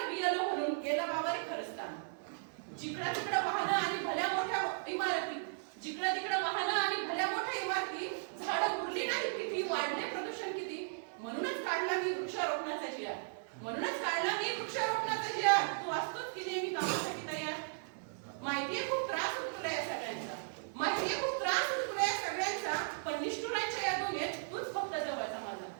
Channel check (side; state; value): left; silent; digital silence